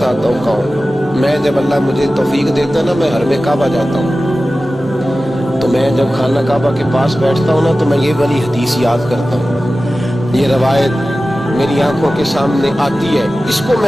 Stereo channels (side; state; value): both; normal; correlation 0.95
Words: हूँ कौन। मैं जब अल्लाह मुझे तौफीक देता ना, मैं हरम काबा जाता हूँ, तो मैं जब खाना काबा के पास बैठता हूँ ना, तो मैं ये वाली हदीस याद करता हूँ। ये रवायत मेरी आंखों के सामने आती है, इसको